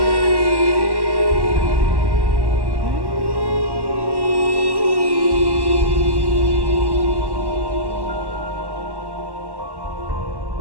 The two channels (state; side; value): late; left; 1.1 ms